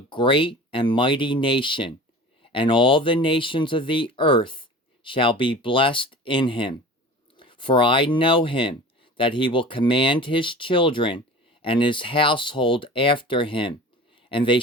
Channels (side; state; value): both; normal; correlation 0.38